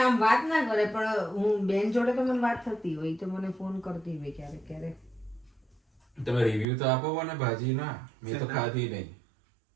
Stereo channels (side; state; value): left; drops out; at 6.7 s